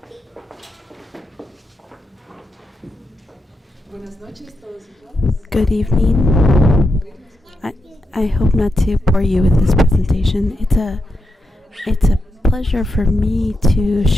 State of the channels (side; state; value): both; normal; correlation 0.86